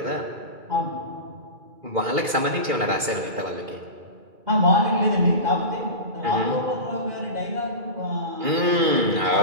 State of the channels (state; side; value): late; left; 2.4 ms